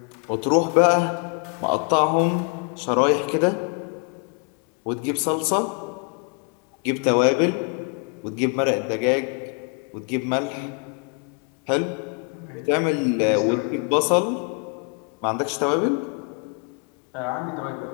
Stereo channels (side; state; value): right; quieter; 35.8 dB